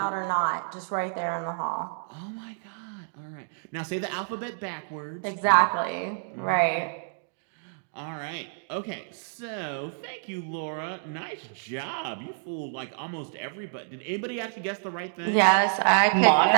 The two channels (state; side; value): silent; left; digital silence